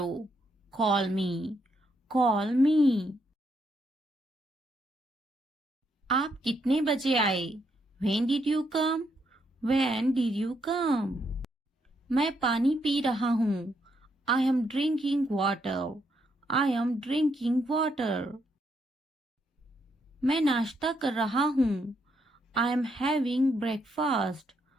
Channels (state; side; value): normal; both; correlation 0.76